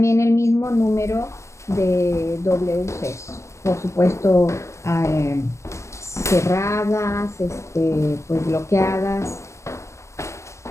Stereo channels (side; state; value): right; late; 0.14 ms